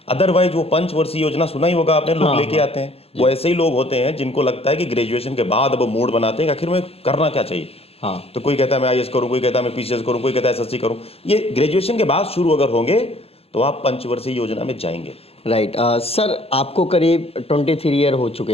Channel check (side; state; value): right; late; 0.29 ms